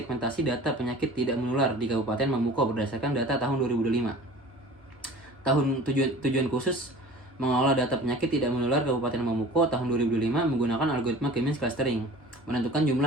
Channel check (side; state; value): both; normal; correlation 0.43